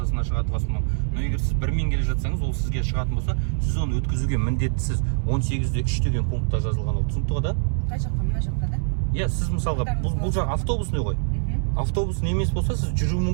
шығатын болса, но егер сіз бірмен келе жатсаңыз, ол сізге шығатын болса, сіз оны өткізуге міндеттісіз. 18-3 деген пунктта жазылған ол, түсінікті ғой да? Қай жаққа, мына жаққа да? Иә, сіз мысалға бұл жақ автобусный ғой. Автобусный емес болса, сіз жүру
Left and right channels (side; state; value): left; silent; digital silence